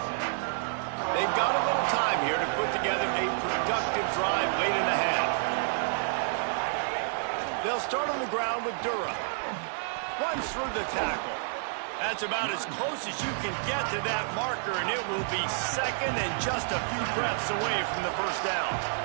They've got a little time here to put together a productive drive late in the half. They'll start on the ground with Durham. Runs through the tackle. That's about as close as you can get to that marker, and it will be second and just a few breaths away from the first down.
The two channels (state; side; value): silent; left; digital silence